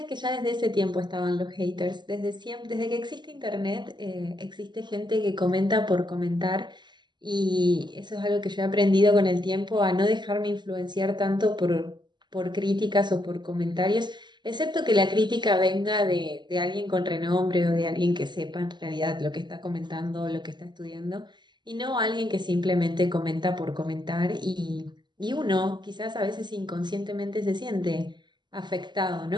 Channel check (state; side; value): late; left; 0.21 ms